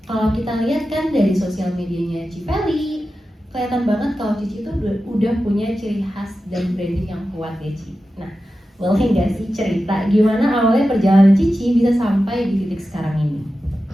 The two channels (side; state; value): both; normal; correlation 0.93